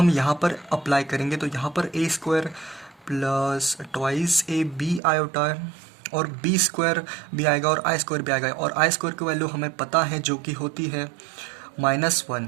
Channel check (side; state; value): left; drops out; at 5.0 s